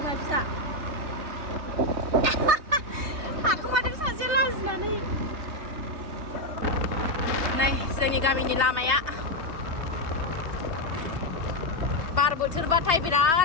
फिसा हाखुमादों सासेया लाजिनानै नै जोंनि गामिनि लामाया बार बोथोरबाथाय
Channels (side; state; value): left; late; 3.2 ms